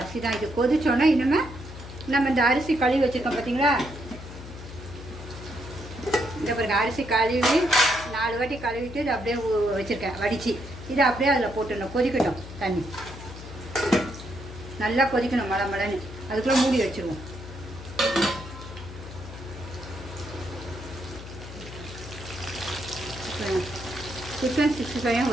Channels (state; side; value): noise; left; hum, 13 dB below the sound